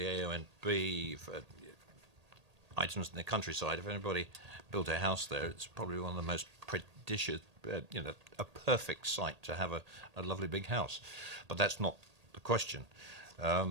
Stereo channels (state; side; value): late; left; 1.8 ms